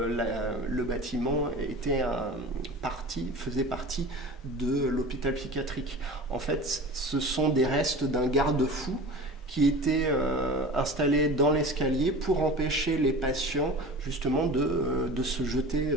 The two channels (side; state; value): both; normal; correlation 0.36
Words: bâtiment faisait partie de l'hôpital psychiatrique. En fait, ce sont des restes d'un garde-fou qui était installé dans l'escalier pour empêcher les patients justement de se jeter